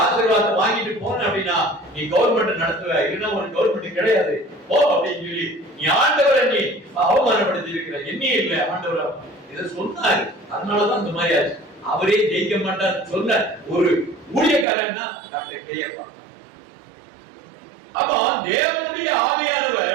ஆசீர்வாதத்தை வாங்கிட்டு போன அப்படின்னா நீ கவர்மெண்ட் நடத்துவ, இல்லைன்னா உனக்கு கவர்மெண்ட் கிடையாது போ அப்படின்னு சொல்லி நீ ஆண்டவரை நீ அவமானப்படுத்தி இருக்கிற. என்ன இல்ல ஆண்டவர் இதை சொன்னாரு. அதனாலதான் இந்த மாதிரி ஆச்சு. அவரே ஜெயிக்க மாட்டார் சொன்ன ஒரு ஊழியக்காரன்னா டாக்டர் கேஎப்பா. அப்போ தேவனுடைய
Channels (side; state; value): left; drops out; at 14.7 s